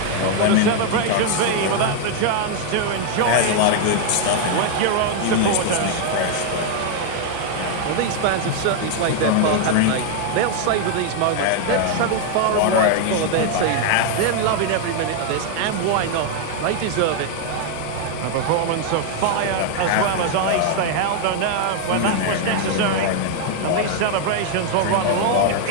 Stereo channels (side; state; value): both; different; correlation 0.00